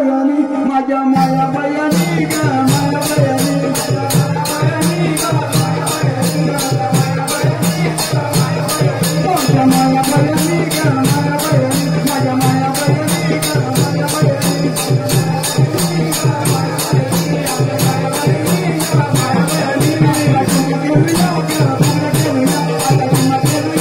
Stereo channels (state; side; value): identical; both; correlation 1.00